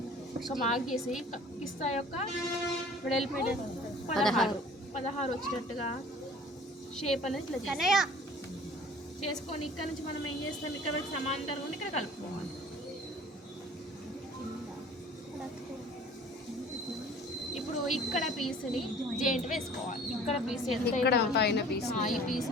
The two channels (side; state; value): both; normal; correlation 0.48